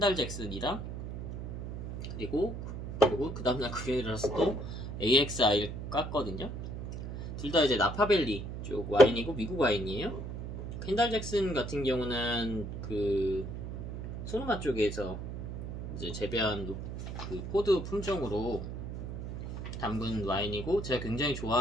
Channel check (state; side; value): noise; right; hum, 6 dB below the sound